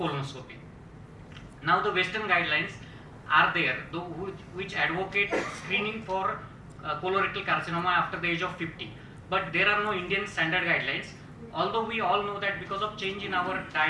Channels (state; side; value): identical; both; correlation 1.00